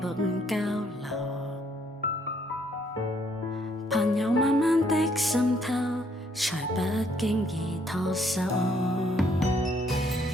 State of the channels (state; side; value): normal; both; correlation 0.68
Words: 交流，朋友慢慢的滲透，才不經意拖手。